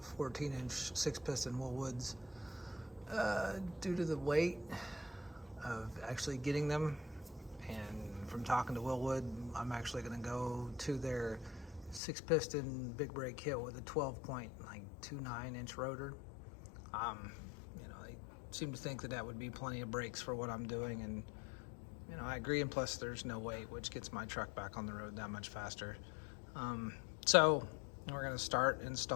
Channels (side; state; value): right; drops out; at 12.0 s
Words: 14-inch 6-piston Wilwoods due to the weight of actually getting them, and from talking to Wilwood, I'm actually gonna go to their 6-piston big brake kit with a 12.29-inch rotor. You know, they seem to think that that would be plenty of brakes for what I'm doing, and you know, I agree, and plus there's no weight, which gets my truck back on the road that much faster. So we're gonna start